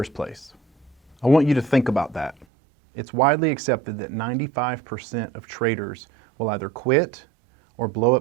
place? I want you to think about that. It's widely accepted that 95% of traders will either quit or blow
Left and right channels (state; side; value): drops out; left; at 2.5 s